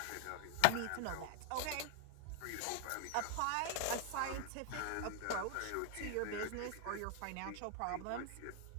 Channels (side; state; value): both; different; correlation 0.00